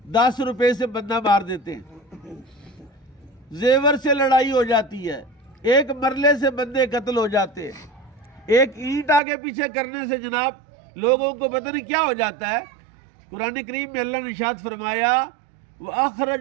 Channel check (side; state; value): left; drops out; at 9.2 s